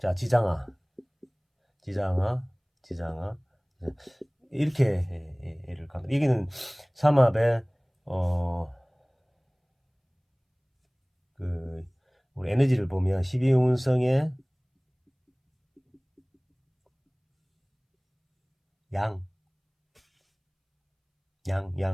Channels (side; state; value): both; identical; correlation 1.00